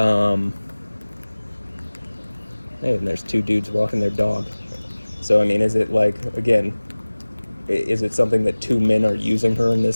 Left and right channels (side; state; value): both; inverted; correlation -1.00